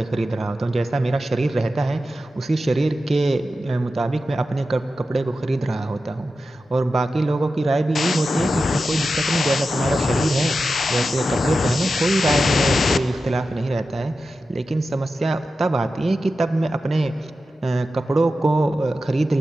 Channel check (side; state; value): both; normal; correlation 0.92